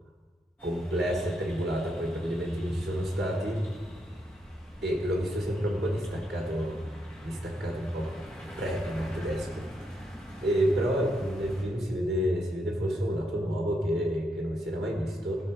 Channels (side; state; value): both; normal; correlation 0.79